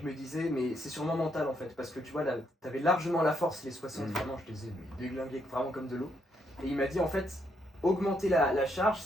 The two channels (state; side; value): normal; both; correlation 0.76